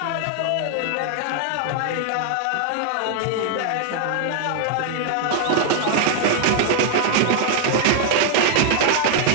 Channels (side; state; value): both; different; correlation 0.00